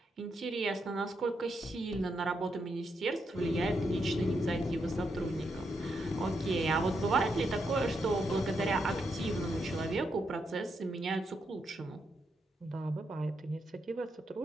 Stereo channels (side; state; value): both; normal; correlation 0.81